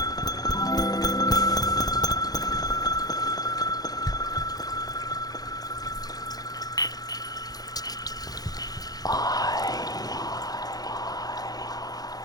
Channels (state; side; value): late; right; 0.19 ms